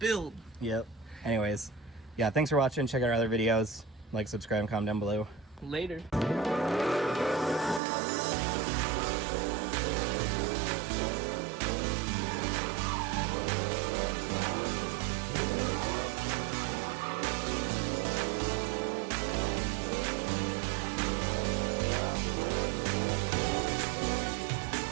Build. Yep. Anyways, yeah, thanks for watching. Check out our other videos. Like, subscribe, and comment down below. Later.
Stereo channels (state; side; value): drops out; left; at 7.8 s